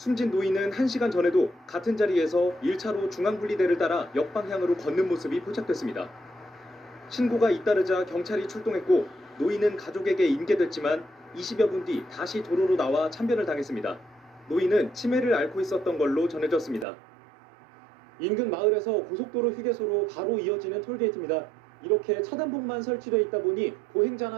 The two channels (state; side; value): drops out; left; at 16.9 s